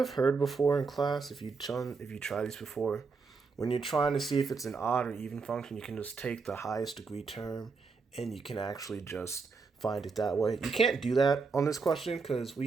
heard before in class, if you try these before, when you're trying to see if it's an odd or even function, you can just take the highest degree term and you can actually just find it that way. You can't do that on this question because we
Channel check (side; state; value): left; quieter; 4.7 dB